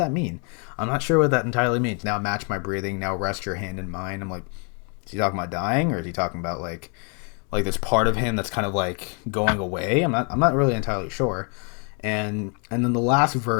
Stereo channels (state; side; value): quieter; right; 38.1 dB